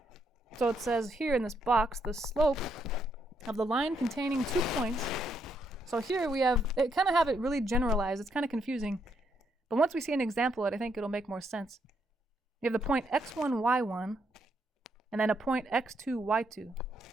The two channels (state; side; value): normal; both; correlation 0.76